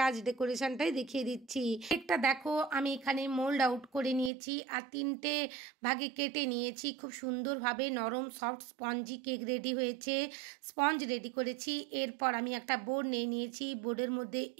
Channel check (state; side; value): drops out; left; at 4.3 s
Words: আজ ডেকোরেশনটাই দেখিয়ে দিচ্ছি। কেকটা দেখো আমি এখানে মোল্ড আউট করে নিয়েছি আর 3টে ভাগে কেটে নিয়েছি। খুব সুন্দরভাবে নরম সফট স্পঞ্জি কেক রেডি হয়েছে। স্পঞ্জ রেডি করেছি। এরপর আমি একটা বোর্ড নিয়ে নিয়েছি। বোর্ডের মধ্যে